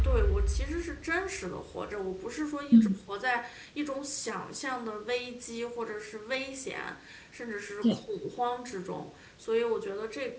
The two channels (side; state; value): both; identical; correlation 1.00